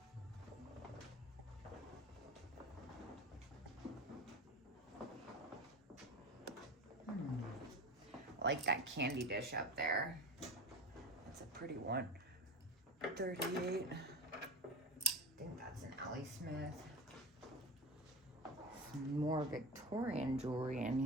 I like that candy dish up there. That's a pretty one. 38. I think that's an Ellie Smith. Some more Victorian jewelry in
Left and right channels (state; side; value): normal; both; correlation 0.31